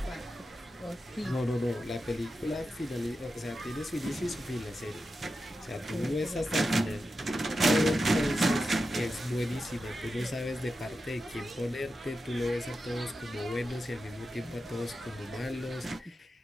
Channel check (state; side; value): normal; both; correlation 0.90